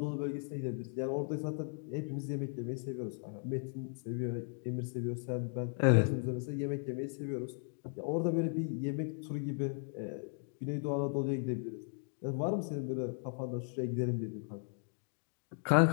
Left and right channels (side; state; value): right; silent; 53 dB below the other